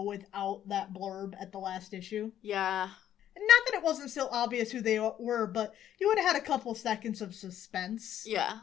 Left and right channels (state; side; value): quieter; right; 11.0 dB